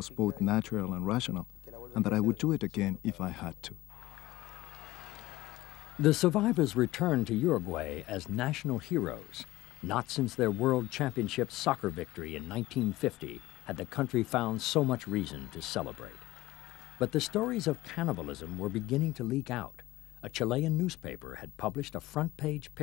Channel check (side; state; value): right; quieter; 18.1 dB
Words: both natural and rational, and that I would do it again if I had to. The survivors returned to Uruguay as national heroes. Not since their World Championship soccer victory in 1950 had the country found so much reason to celebrate. But the stories of cannibalism were beginning to leak out. A Chilean newspaper had published a front-page